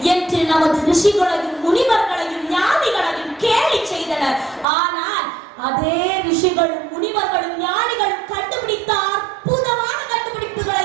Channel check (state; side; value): drops out; left; at 4.7 s